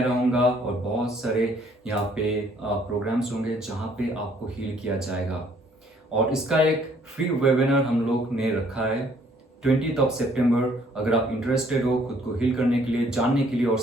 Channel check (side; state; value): both; normal; correlation 0.62